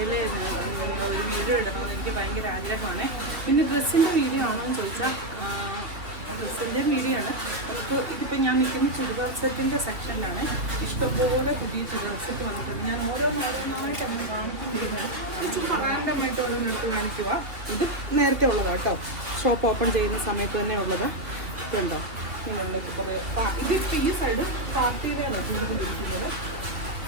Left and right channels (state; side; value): late; left; 2.7 ms